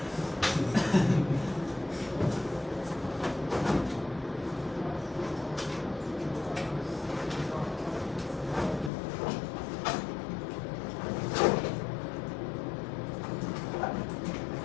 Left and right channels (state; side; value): drops out; right; at 8.9 s